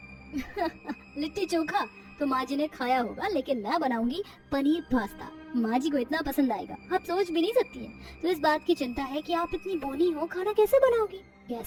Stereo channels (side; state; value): both; identical; correlation 1.00